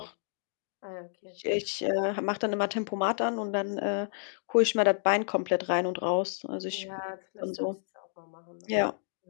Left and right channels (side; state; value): right; silent; digital silence